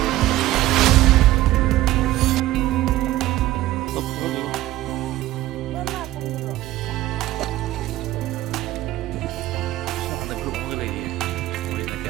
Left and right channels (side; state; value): left; quieter; 15.5 dB